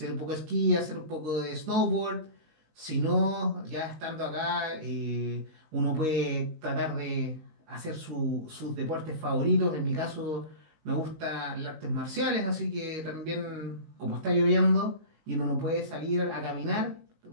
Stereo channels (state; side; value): late; left; 18 ms